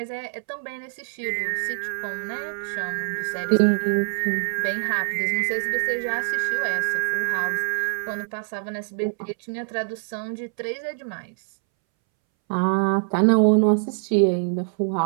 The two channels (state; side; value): silent; left; 62 dB below the other